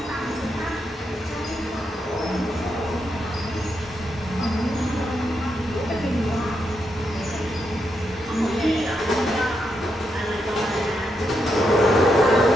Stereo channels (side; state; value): both; normal; correlation 0.82